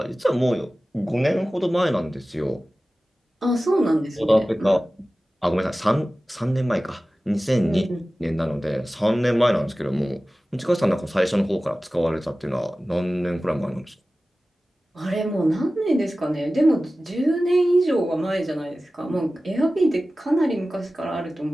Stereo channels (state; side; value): normal; both; correlation 0.96